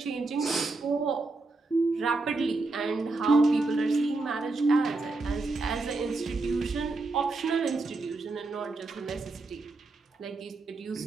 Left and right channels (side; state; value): left; quieter; 3.4 dB